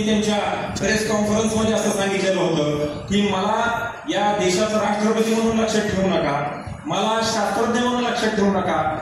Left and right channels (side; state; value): both; identical; correlation 1.00